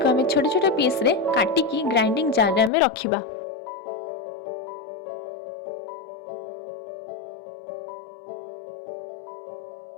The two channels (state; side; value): drops out; right; at 2.7 s